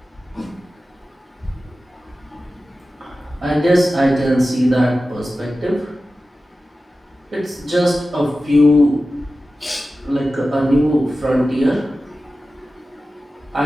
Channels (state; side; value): normal; both; correlation 0.94